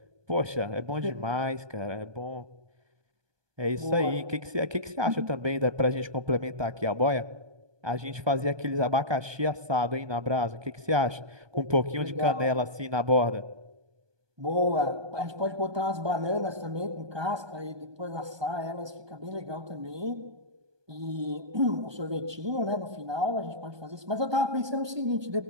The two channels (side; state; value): left; late; 1.2 ms